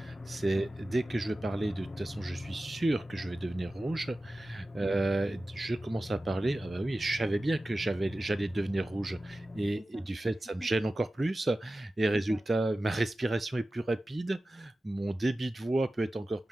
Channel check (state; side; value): normal; both; correlation 0.95